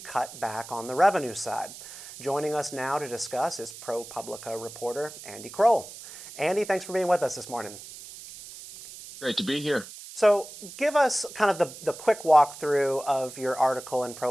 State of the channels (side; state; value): right; noise; hiss, 15 dB below the sound